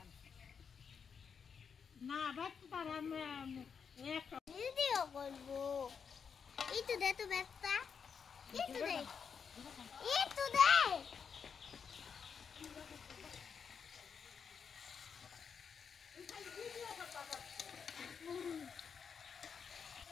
না বাট তার আমি এক ভিডিও করব এই তো দে তো ব্যস্তা এই তো দে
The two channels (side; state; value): right; quieter; 6.5 dB